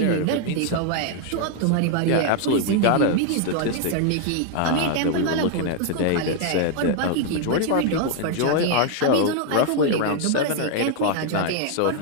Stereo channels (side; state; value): both; different; correlation 0.00